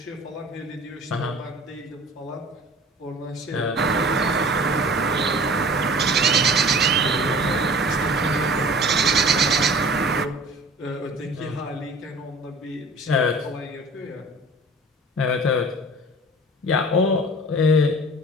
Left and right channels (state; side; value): normal; both; correlation 0.44